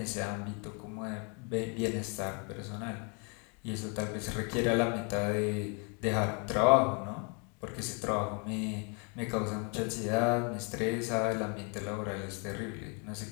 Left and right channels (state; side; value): quieter; right; 36.1 dB